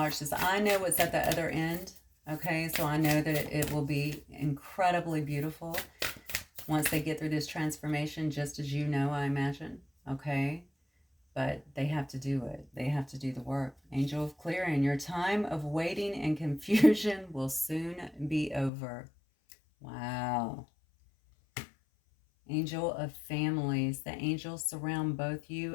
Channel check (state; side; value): drops out; right; at 18.7 s